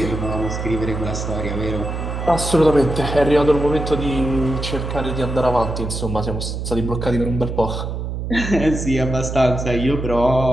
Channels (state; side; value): noise; right; hum, 4 dB below the sound